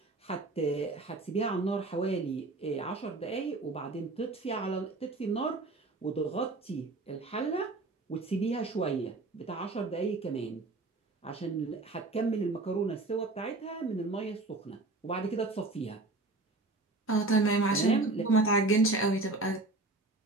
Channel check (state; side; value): quieter; left; 3.2 dB